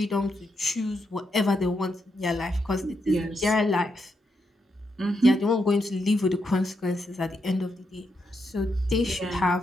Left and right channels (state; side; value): normal; both; correlation 0.82